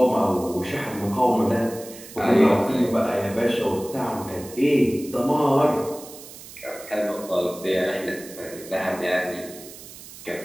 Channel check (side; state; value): right; noise; hiss, 16 dB below the sound